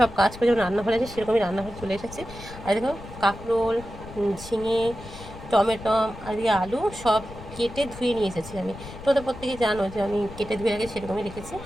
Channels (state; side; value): noise; left; rumble, 14 dB below the sound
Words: কাজ করে যেমন রান্নাঘরে আছে সেরকমই রান্নাঘরে চলে এসেছে। আর দেখো কাঁকরোল, ঝিঙে, টমেটো আর দিয়ে আলু সব কেটে ধুয়ে নিয়ে এসেছি আমি। তো ওদের প্রত্যেকে জানো যে আমি কেটে ধুয়ে আগে সেরকমই রেখেছি।